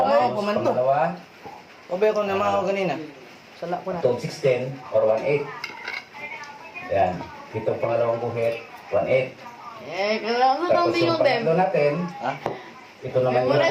Tapos pumanto. pangalawa, Obe ko na mga ako ganina. Sala ko na. 2 of 16 or 1-8. Yan. Itong pangalawang guhit, 1-8. Eh, kailangan sa Tapos yung pangatlo natin, Ha? ito naman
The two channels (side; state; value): both; identical; correlation 1.00